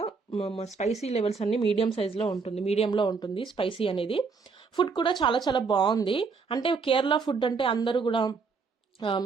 స్పైసీ లెవెల్స్ అన్ని మీడియం సైజ్ లో ఉంటుంది, మీడియంలో ఉంటుంది స్పైసీ అనేది. ఫుడ్ కూడా చాలా చాలా బాగుంది. అంటే కేరళ ఫుడ్ అంటే అందరూ కూడా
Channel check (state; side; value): quieter; left; 4.9 dB